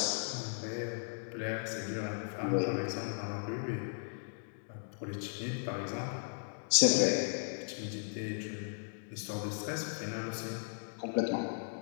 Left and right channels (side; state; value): right; silent; digital silence